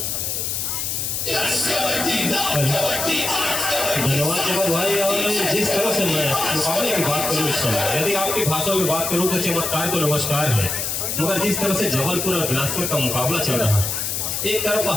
धन्यवाद जगत भाई। और जिस तरह से मैं मुकाबले की बात करूँ इस समय, यदि आपकी भाषा में बात करूँ तो चमत्कार को नमस्कार है, मगर जिस तरह से जबलपुर और बिलासपुर का मुकाबला चल रहा है, एक तरफ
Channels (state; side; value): noise; left; hiss, 1 dB below the sound